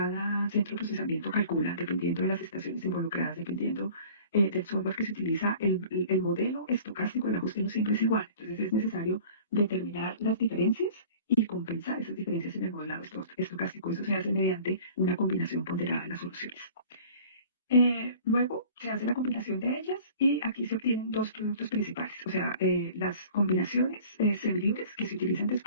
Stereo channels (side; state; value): both; inverted; correlation -0.46